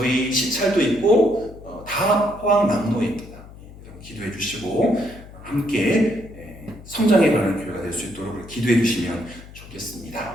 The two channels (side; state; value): left; noise; hum, 18 dB below the sound